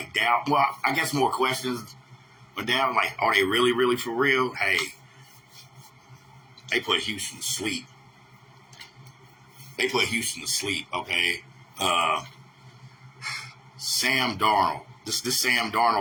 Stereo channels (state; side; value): identical; both; correlation 1.00